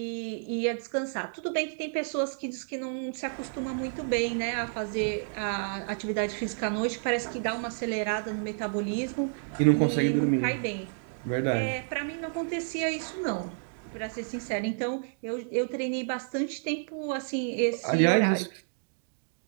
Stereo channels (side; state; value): left; silent; digital silence